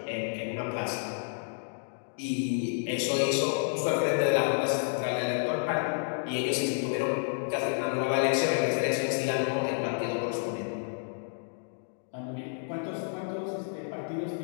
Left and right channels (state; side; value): silent; right; digital silence